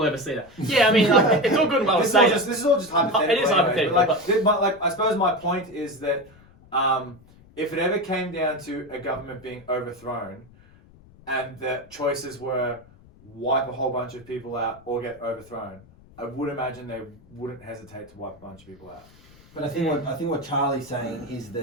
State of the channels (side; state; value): left; noise; rumble, 25 dB below the sound